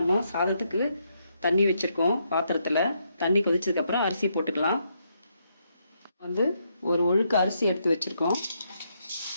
சாதத்துக்கு தண்ணி வச்சிருக்கோம். பாத்திரத்தில் தண்ணி கொதிச்சதுக்கப்புறம் அரிசி போட்டுக்கலாம். ஒரு ஒழுக்கு அரிசி எடுத்து வச்சிருக்கோம்.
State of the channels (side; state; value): both; inverted; correlation -0.77